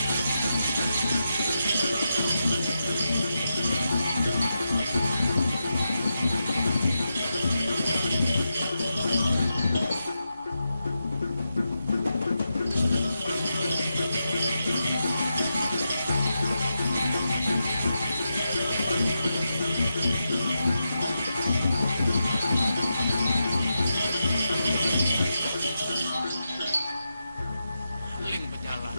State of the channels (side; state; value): both; inverted; correlation -0.87